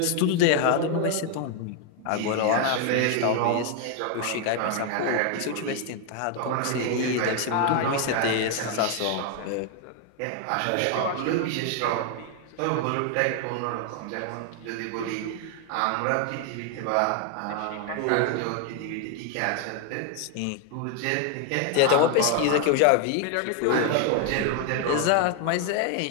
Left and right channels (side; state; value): both; different; correlation 0.01